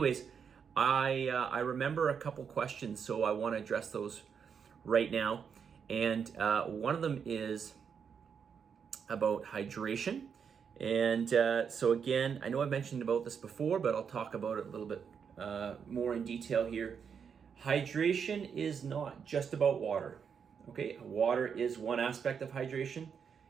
I remember a couple questions, so I want to address those right now. And one of them is about hydration. And so again, I know I've mentioned about this before, but I'll talk about it a little bit more in detail here. Hydration is not just about water. Okay, water is one aspect of hydration,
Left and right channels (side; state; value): left; quieter; 6.8 dB